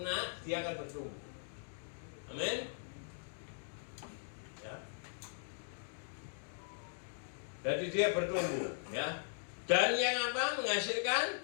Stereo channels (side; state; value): right; silent; digital silence